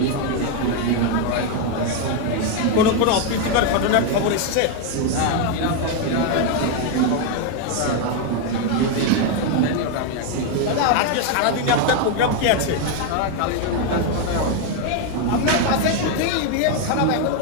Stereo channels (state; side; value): different; both; correlation 0.01